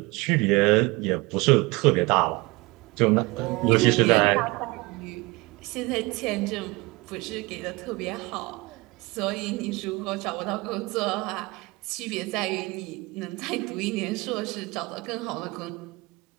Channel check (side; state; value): left; quieter; 24.3 dB